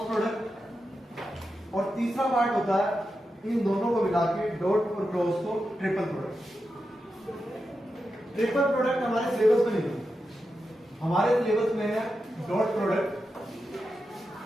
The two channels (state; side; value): normal; both; correlation 0.89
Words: प्रोडक्ट और तीसरा पार्ट होता है इन दोनों को मिला के डॉट और क्रॉस को ट्रिपल प्रोडक्ट। ट्रिपल प्रोडक्ट हमारे सिलेबस में नहीं है, हमारे सिलेबस में है डॉट प्रोडक्ट।